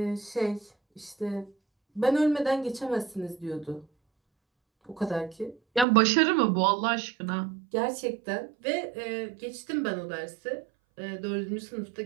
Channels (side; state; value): left; drops out; at 5.9 s